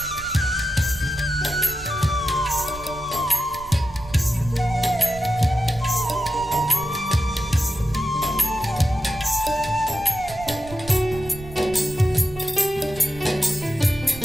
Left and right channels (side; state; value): right; noise; rumble, 16 dB below the sound